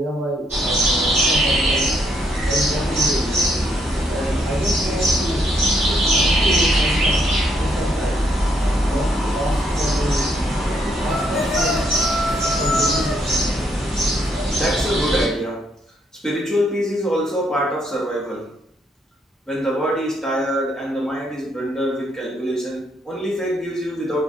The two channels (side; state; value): both; normal; correlation 0.74